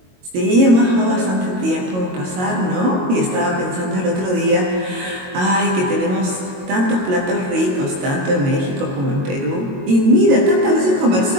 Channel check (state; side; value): late; left; 22 ms